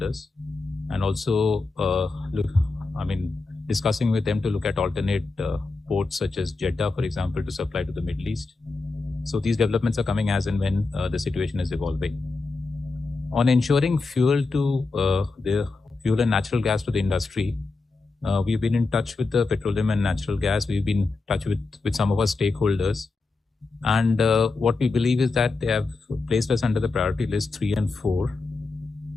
and also, discussing with them to look at alternate ports such as Jeddah, for example, to supply to the Middle East. So these developments are coming as and when the situation is evolving. On ensuring fuel and natural gas to the industry, we've been in touch with the petroleum and natural gas. We've been in touch with some of our stakeholders. And what we believe is that they have placed us under the priority list 3 and 4,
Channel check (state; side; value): quieter; right; 3.8 dB